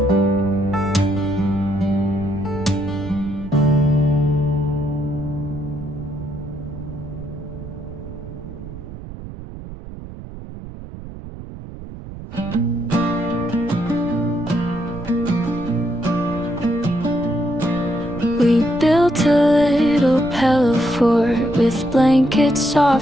We built a little pillow fort with blankets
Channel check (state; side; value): noise; right; rumble, 12 dB below the sound